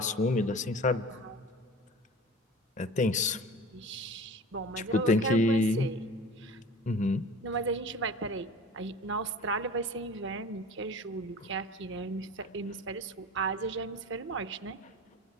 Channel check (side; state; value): both; normal; correlation 0.39